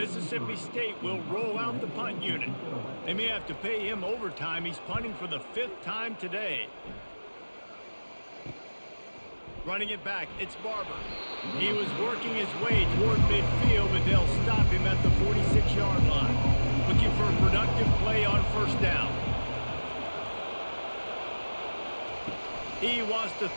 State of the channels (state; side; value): inverted; both; correlation -1.00